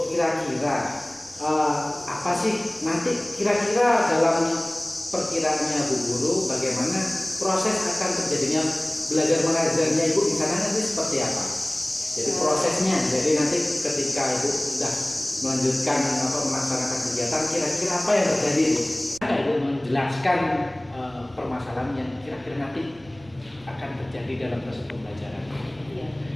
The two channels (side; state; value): right; noise; rumble, 26 dB below the sound